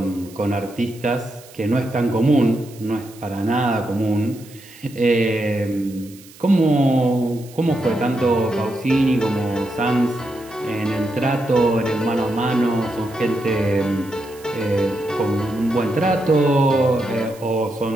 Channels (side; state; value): right; noise; hiss, 22 dB below the sound